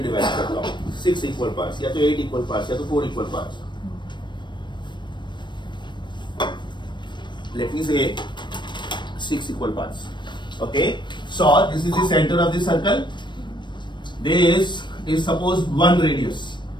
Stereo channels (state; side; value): late; right; 0.22 ms